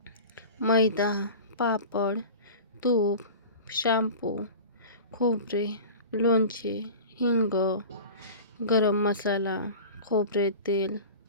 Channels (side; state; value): both; inverted; correlation -0.36